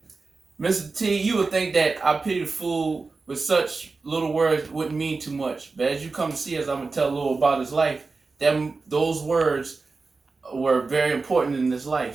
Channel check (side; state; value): left; quieter; 4.0 dB